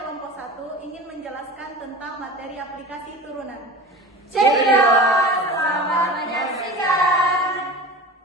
1 ingin menjelaskan tentang materi aplikasi turunan. Cekidot, selamat menyaksikan.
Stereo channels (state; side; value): normal; both; correlation 0.35